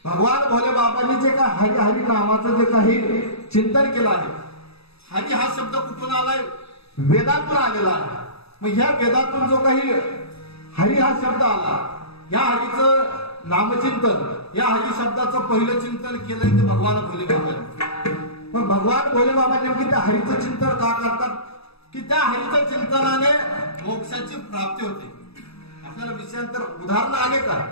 भगवान भोले बाबांनी जे काय हरी हरी नामाचं जे काही चिंतन केलं आहे. हरी हा शब्द कुठून आलाय? वेदातून आलेला आहे. मग ह्या वेदातून जो काही हरी हा शब्द आला, या हरीचं नामचिंतन, या हरी शब्दाचं पहिलं चिंतन केलंय ते भगवान भोले बाबांनी. मग भगवान भोले बाबा नेमकी त्या हरीचं चिंतन का करतात? की त्या हरीच्या चिंतनाने मोक्षाची प्राप्ती होते. आपल्याला विषयांतर उदाहरण आले का?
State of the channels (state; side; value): late; right; 0.78 ms